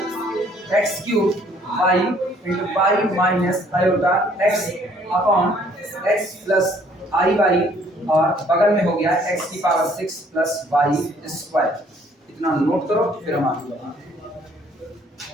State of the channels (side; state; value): both; normal; correlation 0.61